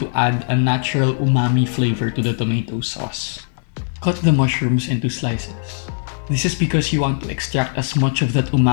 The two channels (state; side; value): silent; right; digital silence